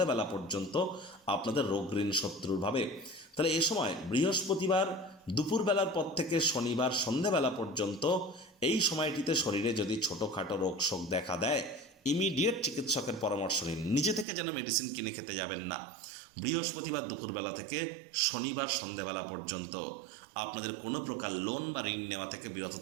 পর্যন্ত আপনাদের রোগ ঋণ শত্রুর ভাবে। তাহলে এ সময় বৃহস্পতিবার দুপুরবেলার পর থেকে শনিবার সন্ধ্যাবেলা পর্যন্ত এই সময়টিতে শরীরে যদি ছোটোখাটো রোগ শোক দেখা দেয়, ইমিডিয়েট চিকিৎসকের পরামর্শ নিন। নিজে থেকে যেন মেডিসিন কিনে খেতে যাবেন না। বৃহস্পতিবার দুপুরবেলা থেকে শনিবার সন্ধ্যাবেলা পর্যন্ত আপনাদের কোনো প্রকার লোন বা ঋণ নেওয়া থেকে বিরত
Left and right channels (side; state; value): left; drops out; at 14.2 s